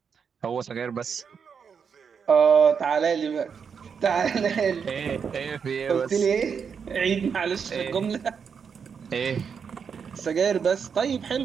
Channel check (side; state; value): left; quieter; 6.5 dB